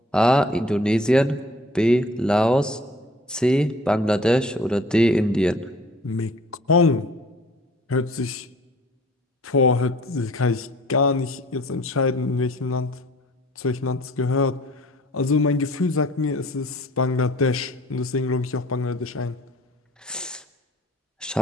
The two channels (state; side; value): normal; both; correlation 0.51